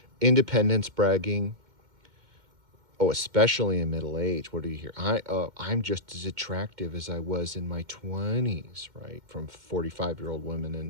Independence bragging. Oh, especially in middle age. What do you hear? I'm just as attractive as I was in my 20s, right? From 45-year-old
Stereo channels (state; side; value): late; left; 2.1 ms